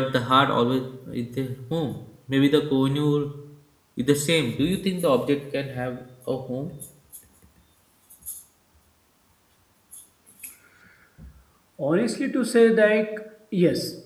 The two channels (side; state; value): both; identical; correlation 1.00